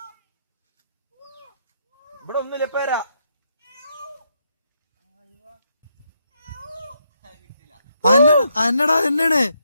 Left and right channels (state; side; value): inverted; both; correlation -0.78